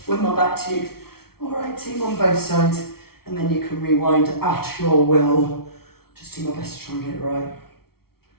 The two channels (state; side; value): late; right; 0.94 ms